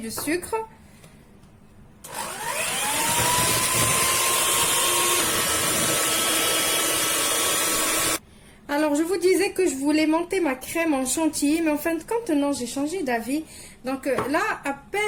sucre. Alors, je vous disais que je voulais monter ma crème en chantilly, mais en fin de compte, non, j'ai changé d'avis. Donc là, à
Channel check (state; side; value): identical; both; correlation 1.00